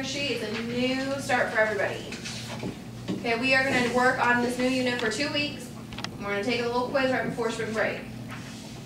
sheet, is a new start for everybody. Okay, we are going to work on this new unit for 2 weeks. We're going to take a little quiz right before spring break.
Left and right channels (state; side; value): identical; both; correlation 1.00